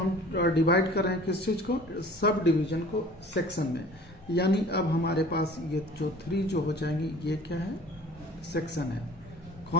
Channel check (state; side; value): normal; both; correlation 0.47